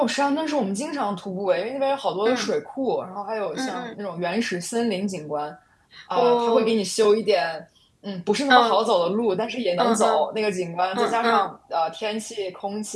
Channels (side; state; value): both; identical; correlation 1.00